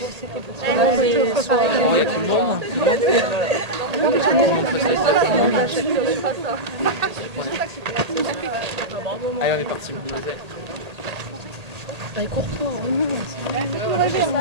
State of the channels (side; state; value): left; late; 1.8 ms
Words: on est parti.